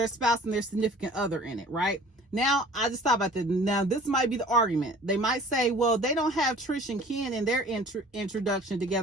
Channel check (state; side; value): normal; both; correlation 0.48